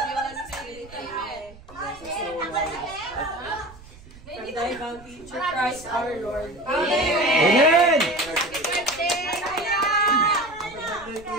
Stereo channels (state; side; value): noise; right; rumble, 21 dB below the sound